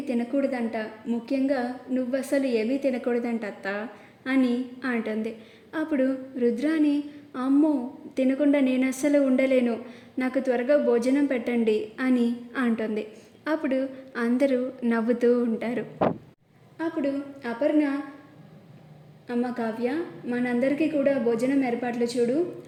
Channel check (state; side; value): identical; both; correlation 1.00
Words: తినకూడదంట, ముఖ్యంగా నువ్వసలు ఏమీ తినకూడదంట అత్త అని అంటుంది. అప్పుడు రుద్రాని, అమ్మో తినకుండా నేను అస్సలు ఉండలేను, నాకు త్వరగా భోజనం పెట్టండి అని అంటుంది. అప్పుడు అందరూ నవ్వుతూ ఉంటారు. అప్పుడు అపర్ణ, అమ్మ కావ్య మనందరికీ కూడా భోజనం ఏర్పాట్లు చూడు